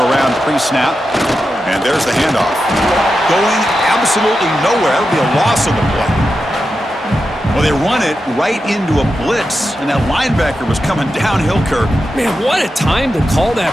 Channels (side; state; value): both; normal; correlation 0.89